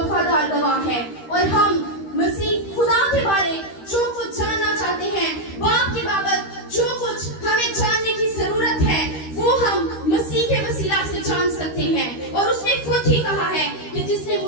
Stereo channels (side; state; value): right; late; 13 ms